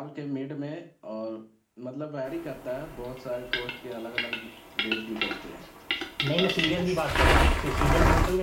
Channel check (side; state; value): both; identical; correlation 1.00